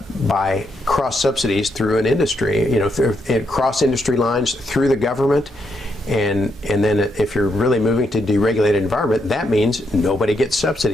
by cross subsidies through an industry, you know, cross industry lines through the government. And then if you're really moving to deregulated environment, that means nobody gets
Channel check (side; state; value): both; normal; correlation 0.79